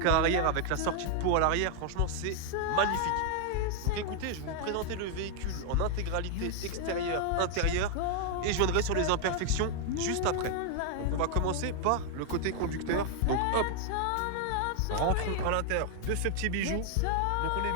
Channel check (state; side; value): different; both; correlation 0.00